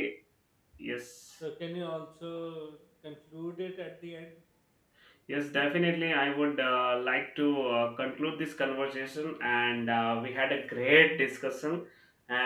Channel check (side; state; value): both; identical; correlation 1.00